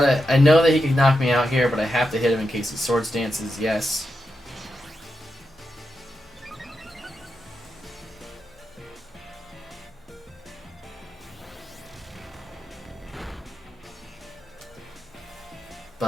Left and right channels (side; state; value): both; normal; correlation 0.87